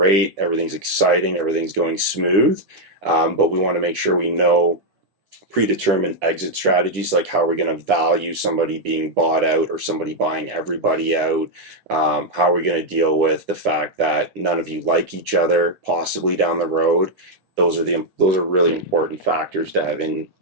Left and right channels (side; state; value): left; late; 9.9 ms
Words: everything's exciting, everything's going smooth. But we want to make sure we know predetermined exit strategies, like how we're going to value somebody being bought out or somebody buying everybody out. How are we going to deal with the fact that none of you like each other possibly down the road? Those are really important factors to have in